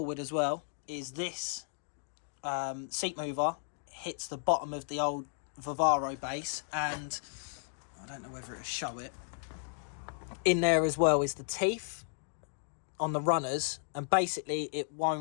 as well is this seat mover hits the bottom of the old Vivaro base, and I don't know whether it'll show it. In there as well is the teeth on the runners, and basically it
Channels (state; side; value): silent; right; digital silence